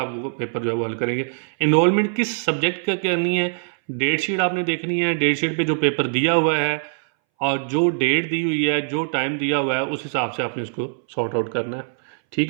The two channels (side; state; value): left; silent; 62 dB below the other